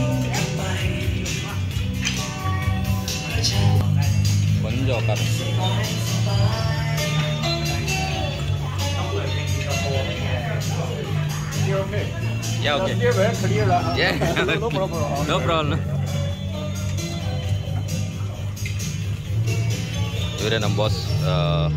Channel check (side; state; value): both; identical; correlation 1.00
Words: 먼저 갔어. Yeah, okay. Yeah, no problem. ಇವರೇ ನಮ್ಮ boss